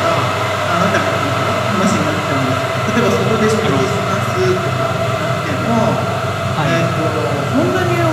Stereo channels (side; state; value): both; identical; correlation 1.00